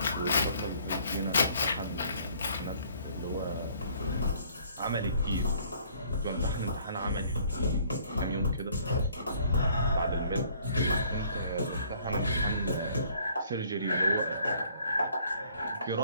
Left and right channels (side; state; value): both; inverted; correlation -0.59